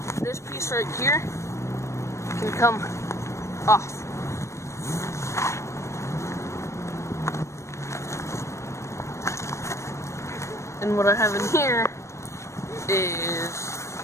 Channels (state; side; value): late; right; 0.14 ms